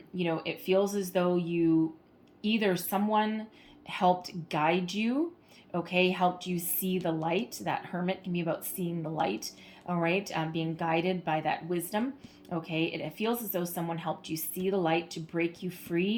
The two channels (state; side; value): identical; both; correlation 1.00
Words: feels as though either someone helped guide you, okay, helped you see the light. That Hermit can be about seeing the light, all right, being guided by that wisdom. Okay, it feels as though someone helped you see the light to break you